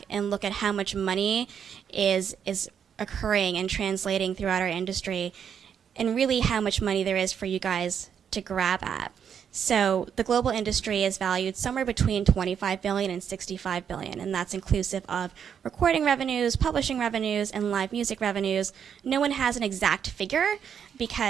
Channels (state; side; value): quieter; left; 7.9 dB